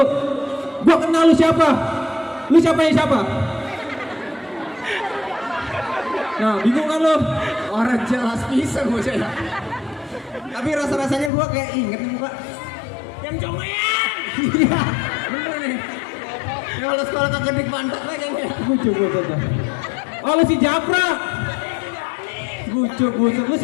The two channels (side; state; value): right; drops out; at 11.3 s